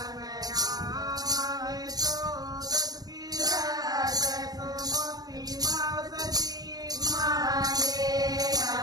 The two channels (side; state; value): left; late; 0.19 ms